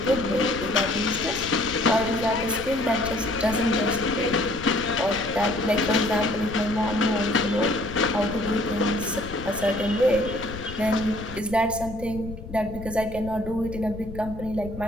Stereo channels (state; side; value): noise; left; rumble, 12 dB below the sound